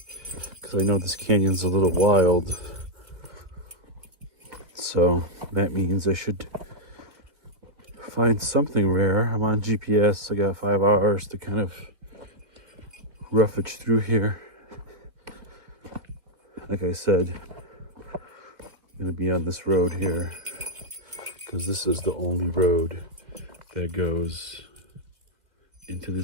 because I know this canyon's a little wild. So that means I should find something rare. I'm on GPS. I got 5 hours to kind of roughage through here. Like I said, I'm gonna be on this road here because this is the only road that goes into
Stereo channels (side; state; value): left; late; 1.8 ms